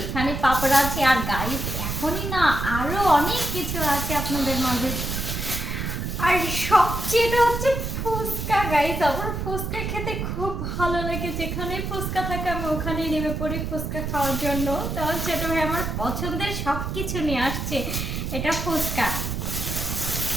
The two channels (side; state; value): right; noise; rumble, 3 dB below the sound